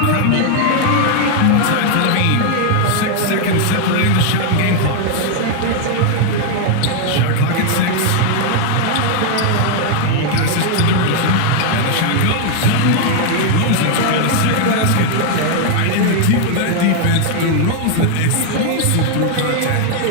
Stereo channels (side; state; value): both; different; correlation 0.00